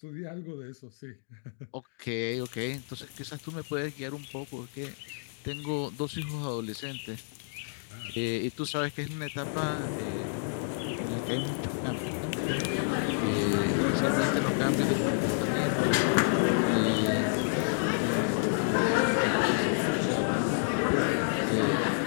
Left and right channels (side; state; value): right; silent; digital silence